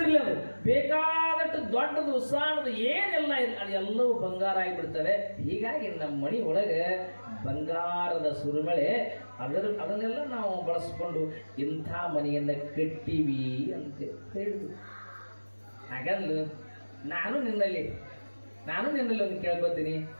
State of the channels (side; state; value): both; inverted; correlation -1.00